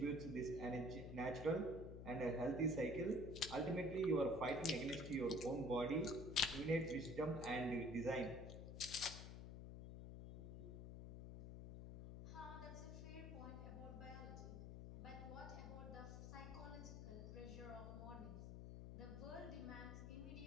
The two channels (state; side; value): noise; left; hum, 8 dB below the sound